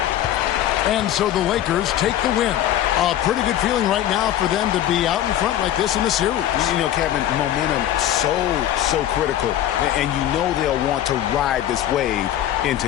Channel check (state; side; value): quieter; right; 12.1 dB